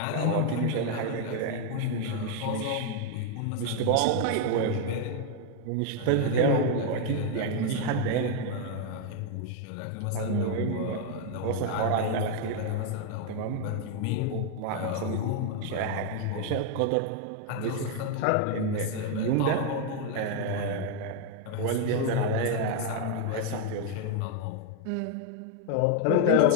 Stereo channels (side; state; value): both; different; correlation 0.00